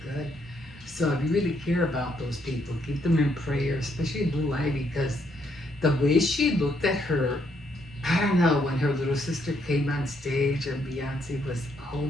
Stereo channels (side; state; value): both; normal; correlation 0.73